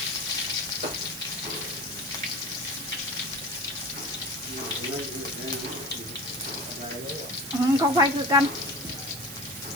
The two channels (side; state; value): right; noise; hiss, 10 dB below the sound